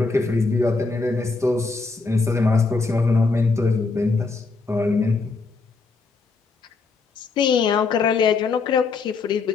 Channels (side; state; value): right; quieter; 4.2 dB